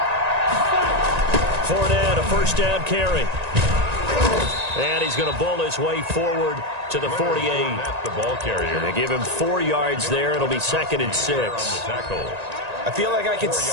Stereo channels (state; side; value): late; left; 1.9 ms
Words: Fournette, a first down carry. And he's going to bowl his way forward to the 48. The ball carrier. They give him 4 yards there. It'll be 2nd and 6. I feel like I could